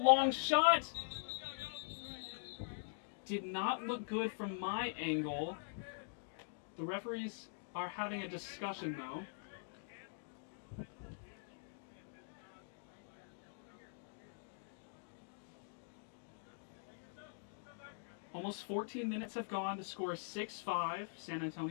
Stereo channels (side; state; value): right; silent; digital silence